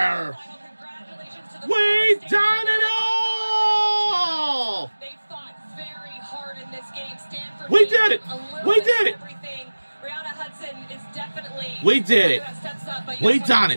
We done it all. They fought very hard in this game. Stanford. We did it. We did it. Everything. Brianna Hudson is definitely. We did it. We done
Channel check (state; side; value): inverted; both; correlation -1.00